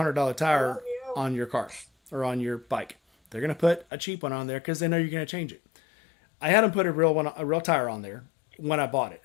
tire on your car or on your bike. They're going to put a cheap one on there because they know you're going to change it. I had them put a real tire on there when I bought it.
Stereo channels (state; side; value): drops out; right; at 3.9 s